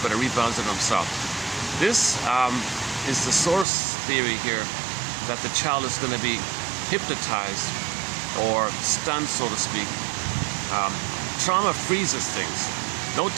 but it rebounds in himself. This is the source theory here, that the child is going to be hypnotized or stunned, so to speak. Trauma freezes things. No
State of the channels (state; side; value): drops out; left; at 3.7 s